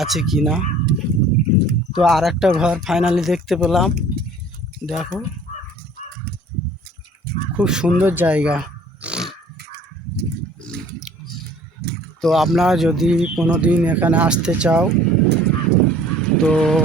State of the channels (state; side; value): normal; both; correlation 0.51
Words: আছে কি না। তো আর একটা ঘর ফাইনালি দেখতে পেলাম। দেখো, খুব সুন্দর জায়গা। তো আপনারা যদি কোনো দিন এখানে আসতে চাও, তো